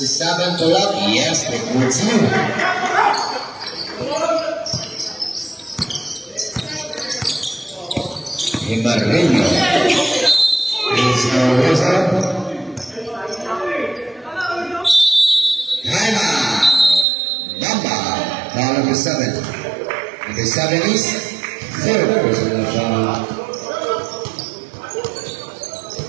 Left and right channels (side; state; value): left; drops out; at 17.1 s